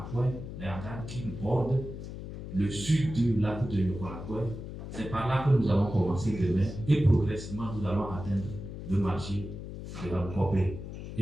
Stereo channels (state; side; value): noise; left; hum, 9 dB below the sound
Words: les hangars qui bordent le sud du lac de Yokonakwe. C'est par là que nous allons commencer demain et progressivement nous allons atteindre le marché de Rancopé